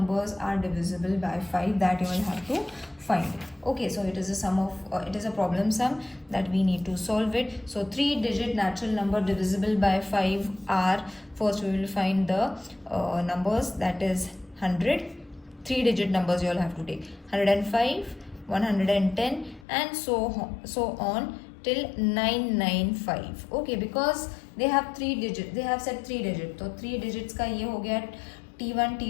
are divisible by 5, that you will have to find. Okay, so it is a sum of it is a problem sum that we need to solve it. So 3-digit natural number divisible by 5 are, first we will find the numbers, that is 100. 3-digit numbers you all have to take 105, 110, and so on till 995. Okay, because they have 3 digits, they have said 3 digits, तो 3 digits का ये हो गया T1,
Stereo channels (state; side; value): drops out; right; at 19.7 s